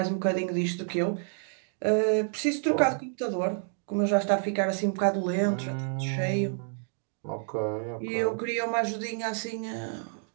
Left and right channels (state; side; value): silent; left; digital silence